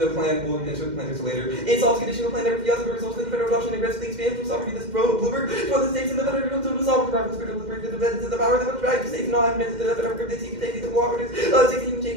plan will enter the plan later. It solves conditional plan never fiasco results in the federal adoption and aggressively expands from sovereignty. This Bloomberg for the states and the federal to the sovereign private spirit of the power that would drive the states not admit to the federal government to take the cooperatives. 16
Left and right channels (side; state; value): left; late; 2.1 ms